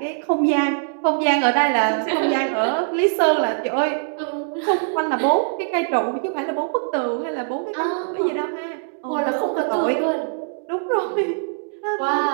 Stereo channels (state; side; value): silent; left; digital silence